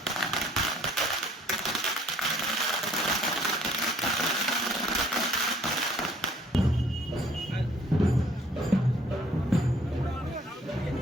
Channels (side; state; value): both; normal; correlation 0.60